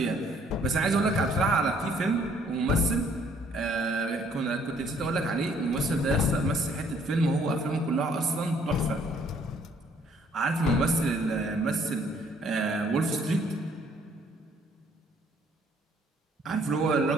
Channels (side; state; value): both; normal; correlation 0.63